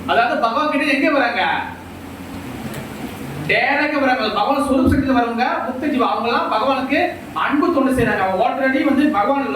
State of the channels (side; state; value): both; identical; correlation 1.00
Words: அதாவது பகவான் கிட்ட எங்க வராங்க? டைரக்டா வராங்க. பகவான் ஸ்வரூப சக்தியில வரவங்க முக்த ஜீவா. அவங்க எல்லாம் பகவானுக்கு அன்பு தொண்டு செய்யறாங்க. அவங்க ஆல்ரெடி வந்து பகவான்